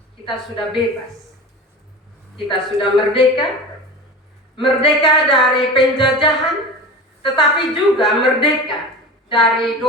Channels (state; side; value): normal; both; correlation 0.32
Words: kita sudah bebas? Kita sudah merdeka? Merdeka dari penjajahan, tetapi juga merdeka dari